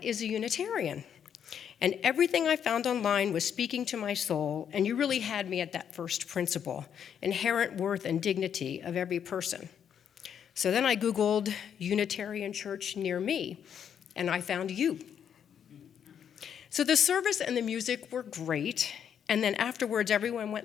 is a Unitarian? And everything I found online was speaking to my soul, and you really had me at that first principle, inherent worth and dignity of every person. So then I Googled Unitarian Church near me, and I found you. So the service and the music were great, and then afterwards everyone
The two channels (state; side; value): quieter; right; 8.4 dB